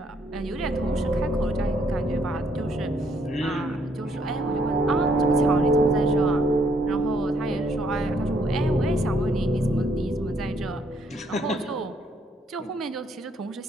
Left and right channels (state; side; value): normal; both; correlation 0.69